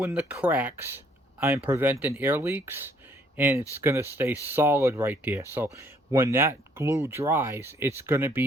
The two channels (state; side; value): normal; both; correlation 0.65